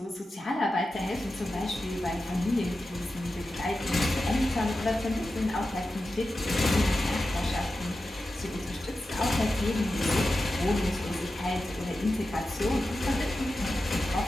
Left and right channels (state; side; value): normal; both; correlation 0.92